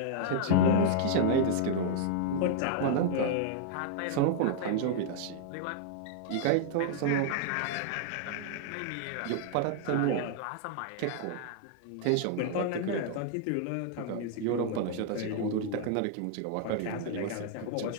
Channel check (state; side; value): different; both; correlation -0.01